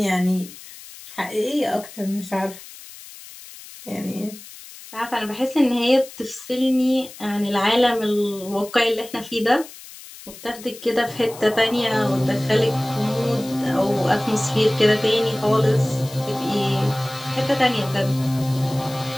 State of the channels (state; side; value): noise; left; hiss, 17 dB below the sound